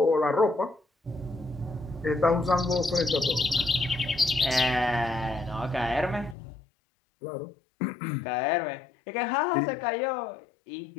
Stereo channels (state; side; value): drops out; right; at 6.4 s